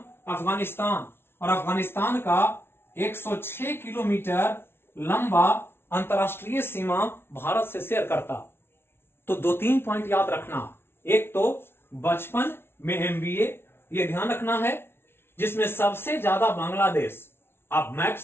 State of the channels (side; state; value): right; late; 0.12 ms